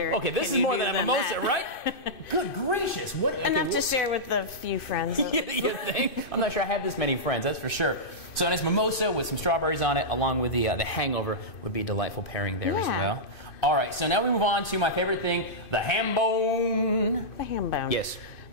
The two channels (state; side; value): late; right; 2.5 ms